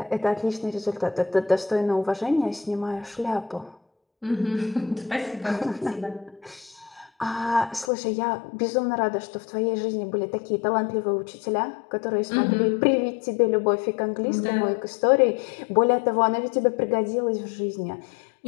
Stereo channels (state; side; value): drops out; right; at 7.9 s